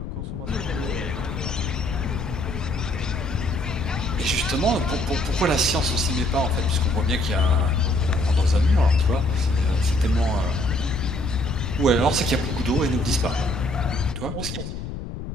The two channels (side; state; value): left; noise; rumble, 7 dB below the sound